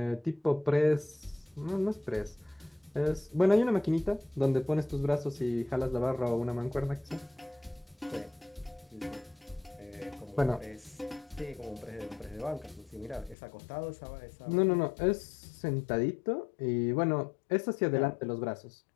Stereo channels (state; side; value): drops out; right; at 13.4 s